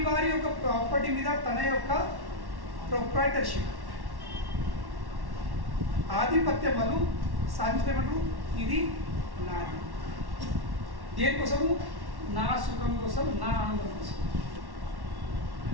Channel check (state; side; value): late; left; 1.1 ms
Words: యొక్క ప్రాపర్టీ మీద తన యొక్క ప్రొప్రైటర్షిప్, ఆధిపత్యం వాళ్ళు సాధించమంటారు. ఇది నాది. దేనికోసము? నా సుఖం కోసం, నా ఆనందం కోసం.